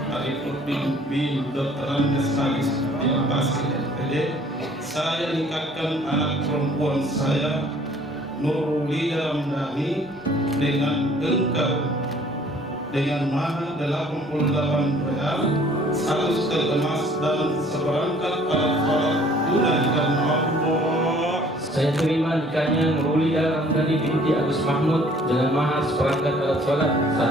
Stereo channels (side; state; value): both; normal; correlation 0.56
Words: Arifudin bin Dr. Andes Halis bin Basir SPD, saya nikahkan anak perempuan saya Nurulida Ramdhani dengan engkau dengan mahar 88 real, 100 tel emas dan seperangkat alat sholat tunai karena Allah. Saya terima nikahnya Nurulida Ramdhani binti Agus Mahmud dengan mahar seperangkat alat sholat,